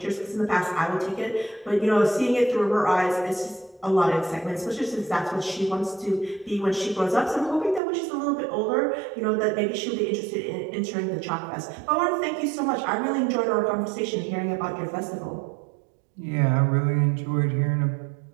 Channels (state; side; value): drops out; left; at 7.8 s